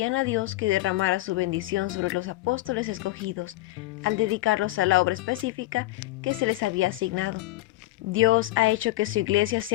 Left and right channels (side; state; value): right; quieter; 18.0 dB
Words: a Dios que derramara su bendición sobre los apóstoles escogidos, al dedicarlos a la obra específica que se les había asignado. Dios ha hecho que su iglesia